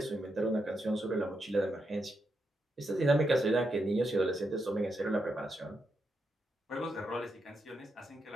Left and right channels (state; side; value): normal; both; correlation 0.83